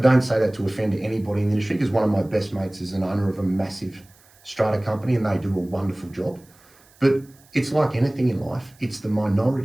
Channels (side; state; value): right; noise; hiss, 29 dB below the sound